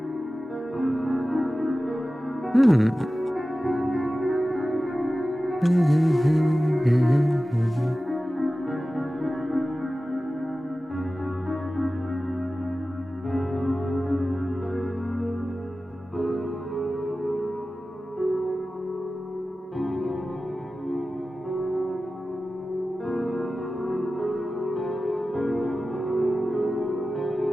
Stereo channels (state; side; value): normal; both; correlation 0.95